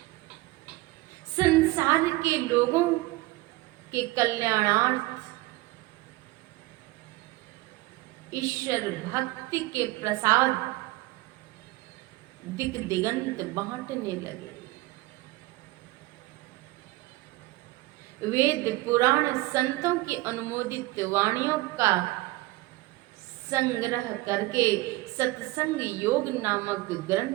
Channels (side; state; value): left; quieter; 20.0 dB